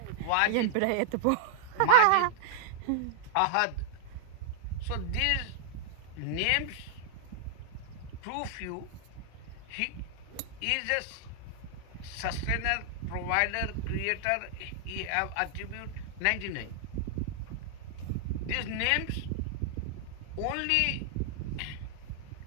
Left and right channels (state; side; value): different; both; correlation -0.01